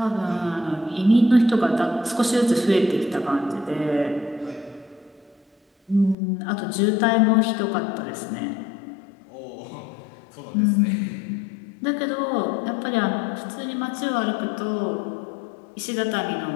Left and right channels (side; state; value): right; drops out; at 6.2 s